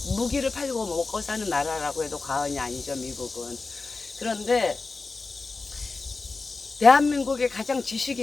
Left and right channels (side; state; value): right; quieter; 3.9 dB